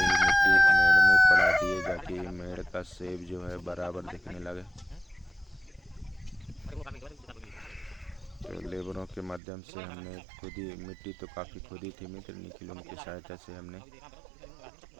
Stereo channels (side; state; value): left; drops out; at 9.4 s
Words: मिट्टी मेड़ में पड़ा दिए, ताकि मेड़ का सेब जो है बराबर दिखने लगे। तो लेबरों के माध्यम से हमने खुद ही, मिट्टी तो काफ़ी खुदी थी मित्र, निखिल उनकी सहायता से हमने